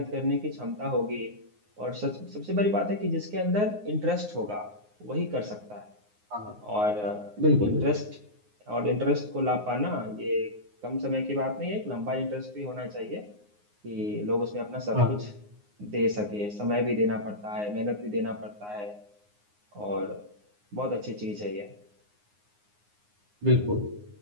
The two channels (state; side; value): late; left; 9.6 ms